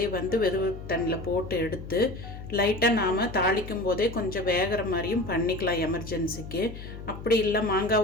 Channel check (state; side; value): noise; left; hum, 12 dB below the sound